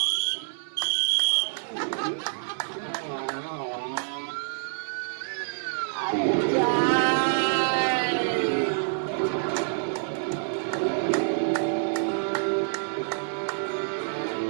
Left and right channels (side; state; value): left; silent; 58 dB below the other